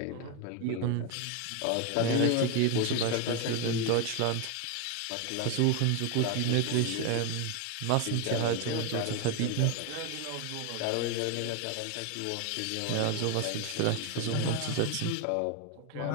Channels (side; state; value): both; different; correlation 0.01